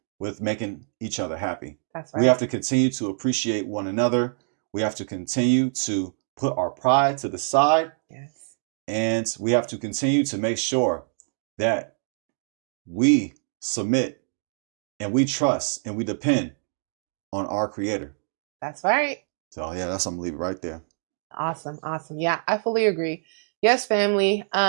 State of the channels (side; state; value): left; silent; digital silence